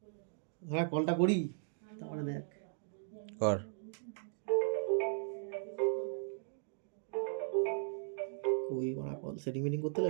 হ্যাঁ, কলটা করি তারপরে দেখ। কর। ওই করা কল সেটিং মিটিং করতে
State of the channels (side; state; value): left; silent; digital silence